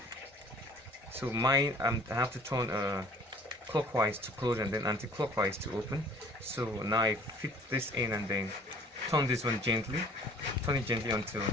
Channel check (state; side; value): normal; both; correlation 0.53